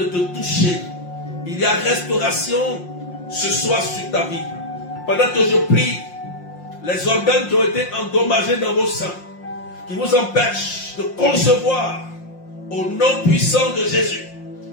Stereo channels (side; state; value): right; late; 5.6 ms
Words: te toucher. Il y a restauration ce soir sur ta vie. Pendant que je prie, les organes qui ont été endommagés dans vos seins, qui vous empêchent de concevoir, au nom puissant de Jésus,